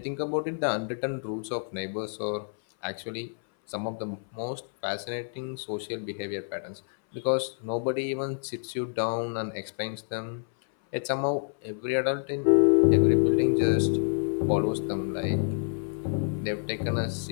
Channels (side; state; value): right; silent; 59 dB below the other